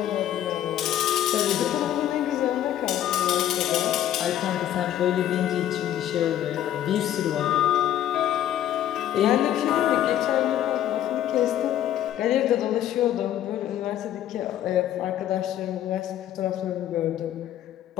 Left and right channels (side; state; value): right; quieter; 11.7 dB